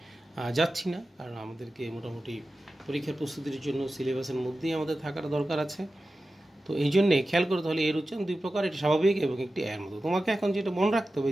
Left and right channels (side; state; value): both; normal; correlation 0.94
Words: যাচ্ছি না, কারণ আমাদেরকে মোটামুটি পরীক্ষার প্রস্তুতির জন্য সিলেবাসের মধ্যেই আমাদের থাকার দরকার আছে। তো এই জন্যে খেয়াল করে তাহলে এর উচ্চারণ দুই প্রকার, একটি স্বাভাবিক এবং একটি এর মতো। তোমাকে এখন যেটা মনে রাখতে হবে